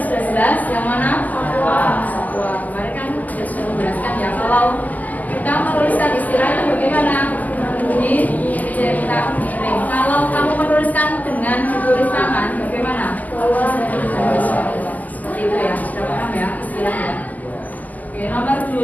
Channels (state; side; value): late; right; 0.080 ms